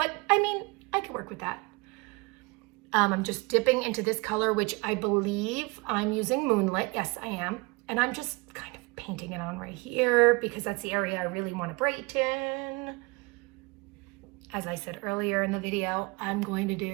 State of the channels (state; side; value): quieter; left; 26.7 dB